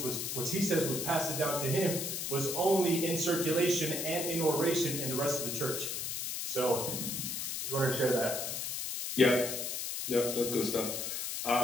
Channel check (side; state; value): left; noise; hiss, 3 dB below the sound